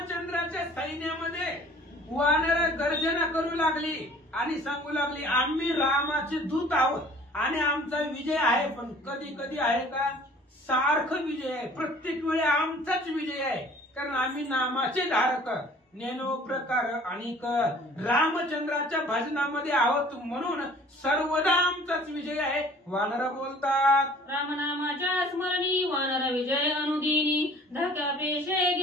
सैन्यामध्ये वानर गर्जना करू लागली आणि सांगू लागली, आम्ही रामाचे दूत आहोत आणि आमचा विजय आहे. पण कधी कधी आहे का, सारखं विजय आहे, प्रत्येक वेळी आमचाच विजय आहे, कारण आम्ही नामाचे धारक नेनो प्रकार आणि रामचंद्राच्या भजनामध्ये आहोत, म्हणून सर्वदा आमचाच विजय आहे. वानर बोलतात, रामनामाच्या स्मरणी वानर विजय अनुदिनी, धाक्या पेशे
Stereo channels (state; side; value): normal; both; correlation 0.51